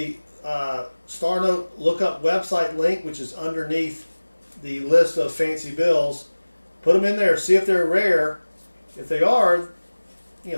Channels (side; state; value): both; inverted; correlation -1.00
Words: star note lookup website link, which is underneath the list of fancy bills. Put them in there, see if they're rare. If they are,